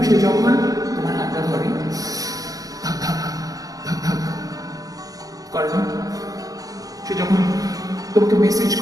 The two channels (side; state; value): left; late; 0.17 ms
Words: সে যখন তোমার হাতটা ধরে ধাক ধাক ধাক ধাক করে না, সে যখন তোমাকে মেসেজ